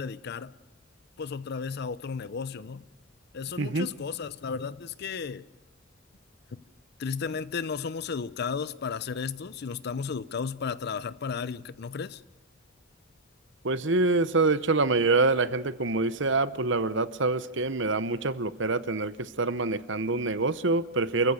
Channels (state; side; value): normal; both; correlation -0.06